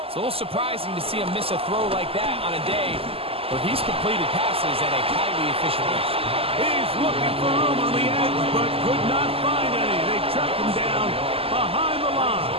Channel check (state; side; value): late; left; 0.28 ms